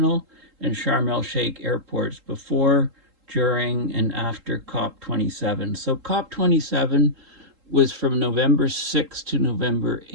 and Sharm el-Sheikh airports before, during, and after COP27. So COP27 was from November 6th to November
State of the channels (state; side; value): late; left; 3.8 ms